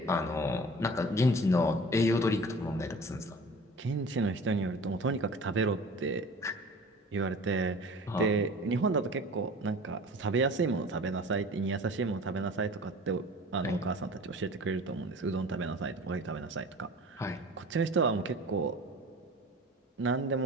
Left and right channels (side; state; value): both; normal; correlation 0.41